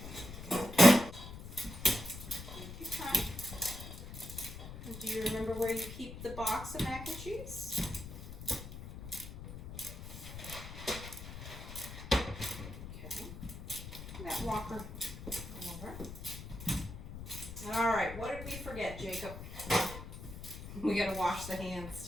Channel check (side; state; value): left; noise; rumble, 11 dB below the sound